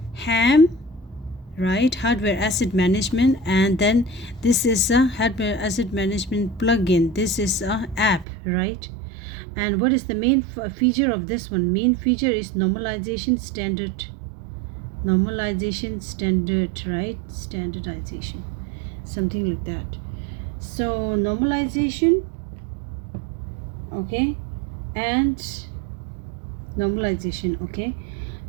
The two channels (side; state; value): left; drops out; at 8.2 s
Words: HAM, right, hardware asset management, and then this is a hardware asset management plugin. This is a app, right? And what is the main feature of this one? Main feature is normalization standard. Normalization standard, right? Standardization, something like that. So normalization, okay, and normalization, okay.